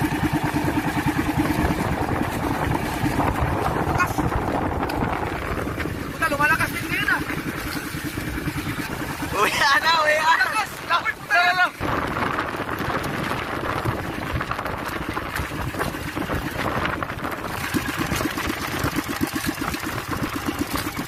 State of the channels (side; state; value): both; identical; correlation 1.00